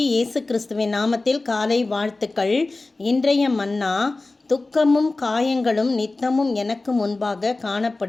இயேசு கிறிஸ்துவின் நாமத்தில் காலை வாழ்த்துக்கள். இன்றைய மன்னா, துக்கமும் காயங்களும் நித்தமும் எனக்கு முன்பாக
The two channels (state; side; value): quieter; right; 3.3 dB